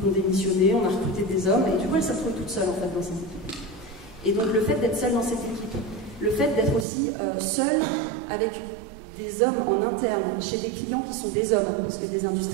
ont démissionné, on a recruté des hommes, et du coup, elles se retrouvent toutes seules en fait dans cette équipe. Et donc le fait d'être seule dans cette équipe, le fait d'être aussi seule avec des hommes en interne, chez des clients qui sont des hommes, parce que des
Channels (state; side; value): drops out; left; at 6.9 s